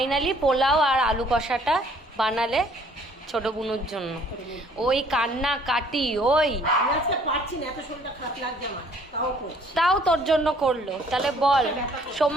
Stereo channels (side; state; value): both; normal; correlation 0.59